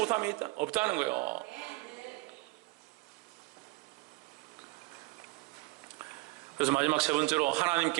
없다는 거예요. 그래서 마지막 세 번째로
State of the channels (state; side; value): quieter; left; 23.2 dB